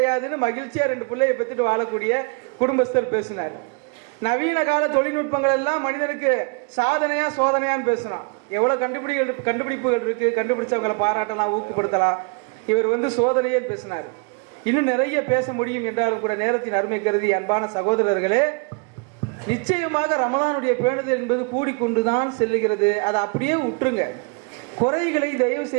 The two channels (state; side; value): quieter; left; 33.5 dB